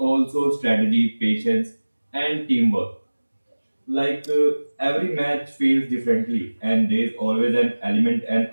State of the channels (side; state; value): both; inverted; correlation -1.00